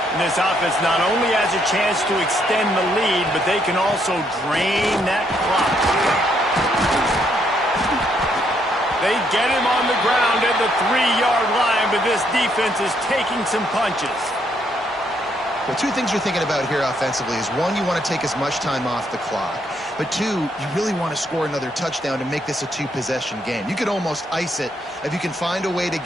And this offense not only has a chance to extend the lead, but they can also drain that clock. They get him on the ground at the 3-yard line, but this defense is taking some punches. Well, two things you're thinking about here offensively is, one, you want to take as much time off the clock. But two, you really want to score another touchdown to make this a 2-possession game. You could almost ice it if you can find a way to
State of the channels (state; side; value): normal; both; correlation 0.73